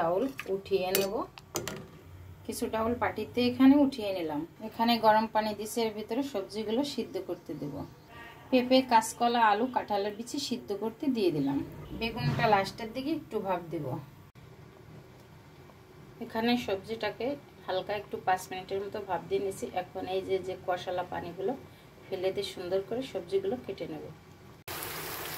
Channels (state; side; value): identical; both; correlation 1.00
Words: উঠিয়ে নেব। কিছু ডাউল পাটিতে এখানে উঠিয়ে নিলাম। এখানে গরম পানি দিয়েছি, এর ভিতরে সবজিগুলো সিদ্ধ করতে দেব। পেঁপে, কাঁচকলা, আলু, কাঁঠালের বিচি সিদ্ধ করতে দিয়ে দিলাম। বেগুনটা লাস্টের দিকে একটু ভাপ দেব। এখানে সবজিটাকে হালকা একটু 5 মিনিটের মতো ভাপ দিয়ে নিয়েছি। এখন এই যে কষালা পানিগুলো ফেলে দিয়ে সুন্দর করে সবজিগুলো কেটে নেব।